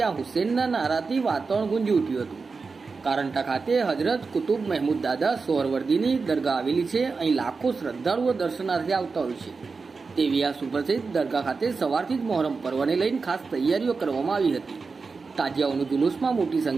હુસેનના નારાથી વાતાવરણ ગુંજી ઉઠ્યું હતું. કારંટા ખાતે હજરત કુતુબ મહેમૂદ દાદા સોહરવર્દીની દરગાહ આવેલી છે. અહીં લાખો શ્રદ્ધાળુઓ દર્શનાર્થે આવતા હોય છે. તેવી આ સુપ્રસિદ્ધ દરગાહ ખાતે સવારથી જ મહોરમ પર્વને લઈને ખાસ તૈયારીઓ કરવામાં આવી હતી. તાજિયાઓનું જુલુસમાં મોટી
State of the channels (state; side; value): quieter; left; 4.5 dB